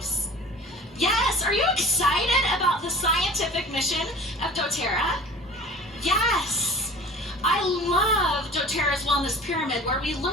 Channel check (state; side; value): normal; both; correlation 0.43